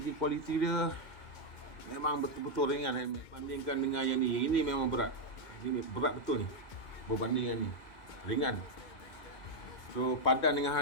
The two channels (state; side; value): late; right; 2.2 ms